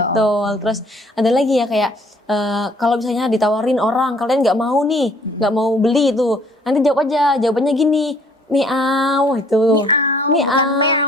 Terus ada lagi ya kayak kalau misalnya ditawarin orang kalian nggak mau nih, nggak mau beli itu, nanti jawab aja, jawabannya gini, miau itu. Miau, bukan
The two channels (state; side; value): normal; both; correlation 0.59